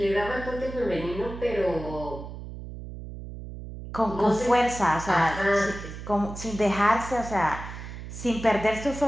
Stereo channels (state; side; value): noise; right; hum, 11 dB below the sound